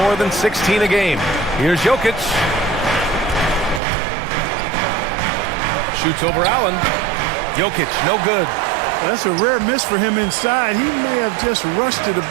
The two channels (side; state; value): left; drops out; at 3.8 s